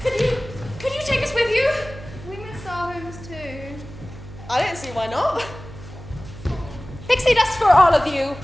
Could you take us with you? We miss our homes too. I don't see why not. Pixie dust for all of you.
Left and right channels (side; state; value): right; noise; hum, 15 dB below the sound